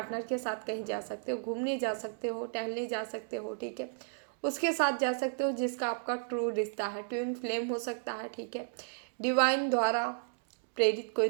के साथ कहीं जा सकते हो, घूमने जा सकते हो, टहलने जा सकते हो, ठीक है। उसके साथ जा सकते हो जिसका आपका ट्रू रिश्ता है, ट्विन फ्लेम हो सकता है, ठीक है। डिवाइन द्वारा प्रेरित कोई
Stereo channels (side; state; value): left; silent; digital silence